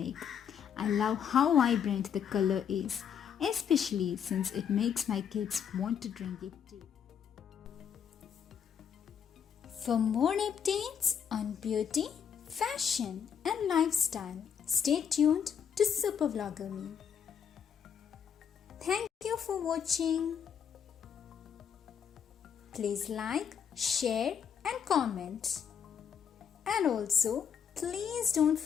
I love how vibrant the color is, especially since it makes my kids want to drink it too. For more updates on beauty, fashion and lifestyle, stay tuned to Super Vlogger Me. Thank you for watching. Please like, share and comment. And also, please don't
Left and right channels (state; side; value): quieter; right; 7.8 dB